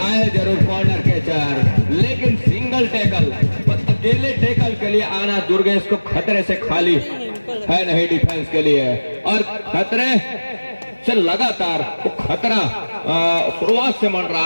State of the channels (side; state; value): both; inverted; correlation -1.00